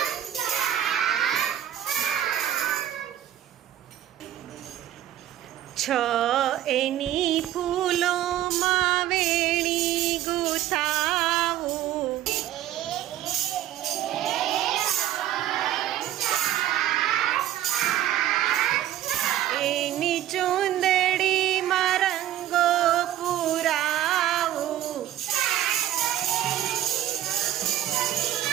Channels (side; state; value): left; quieter; 12.6 dB